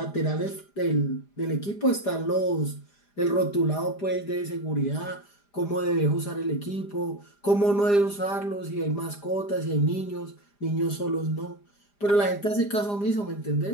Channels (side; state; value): right; late; 4.9 ms